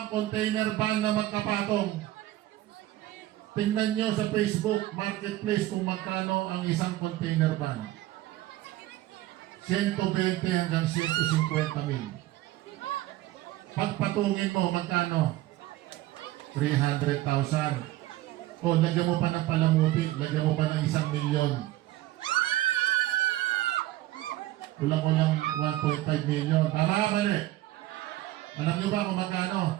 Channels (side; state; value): left; quieter; 15.8 dB